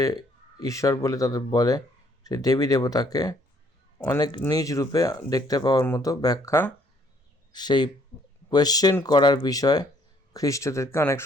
ঈশ্বর বলে তাদের বলে সেই দেবী দেবতাকে অনেক নিজ রূপে দেখতে পাওয়ার মতো ব্যাখ্যা সেই কোয়েশ্চেন করার বিষয় খ্রিস্টদেরকে অনেক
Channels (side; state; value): both; normal; correlation 0.64